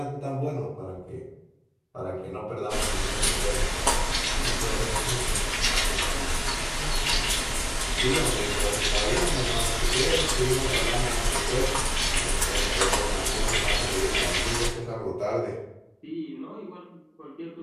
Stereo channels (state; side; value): identical; both; correlation 1.00